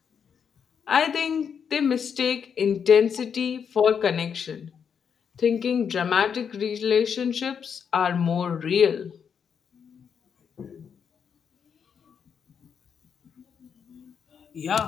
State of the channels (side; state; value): right; quieter; 7.1 dB